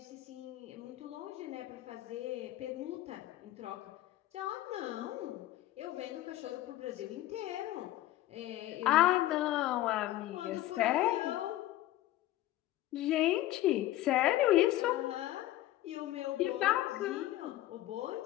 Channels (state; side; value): quieter; right; 15.0 dB